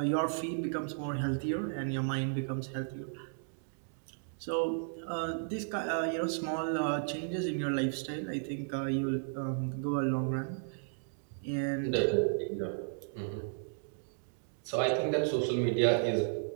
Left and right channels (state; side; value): silent; left; digital silence